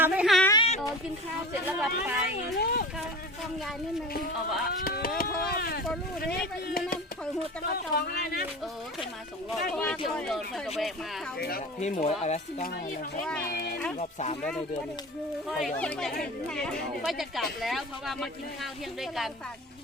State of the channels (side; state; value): both; normal; correlation 0.34